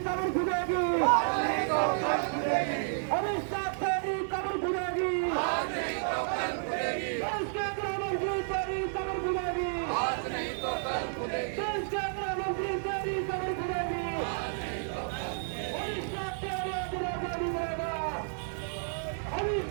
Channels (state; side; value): silent; left; digital silence